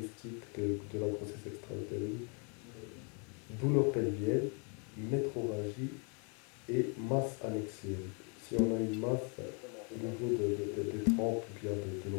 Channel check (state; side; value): quieter; right; 36.8 dB